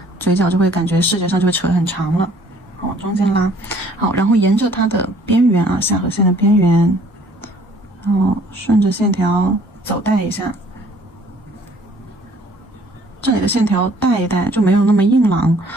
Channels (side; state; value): both; normal; correlation 0.58